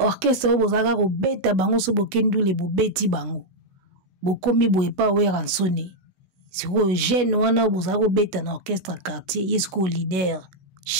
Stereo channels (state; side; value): late; left; 16 ms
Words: o bozaka ko beta bango so bokendule bo beti bango bokomi boye pa wera nsone siko jeune wana bozaka ko beta na orchestre quartier yesko leader